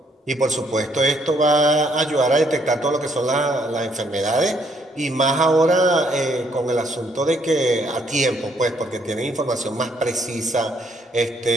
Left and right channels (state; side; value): normal; both; correlation 0.69